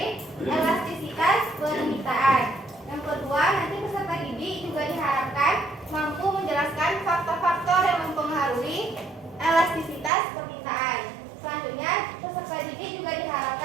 elastisitas permintaan. Yang kedua, nanti peserta didik juga diharapkan mampu menjelaskan faktor-faktor yang mempengaruhi elastisitas permintaan. Selanjutnya, peserta didik juga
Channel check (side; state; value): left; drops out; at 10.1 s